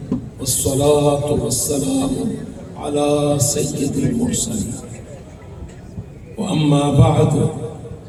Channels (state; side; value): identical; both; correlation 1.00